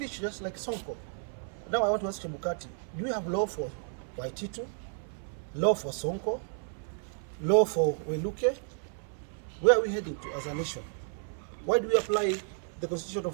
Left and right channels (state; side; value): silent; left; 57 dB below the other